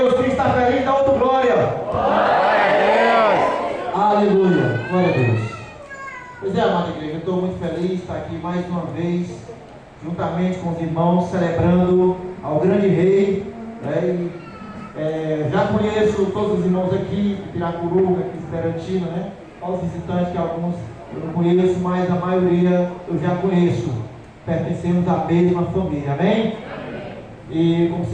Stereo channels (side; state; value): both; identical; correlation 1.00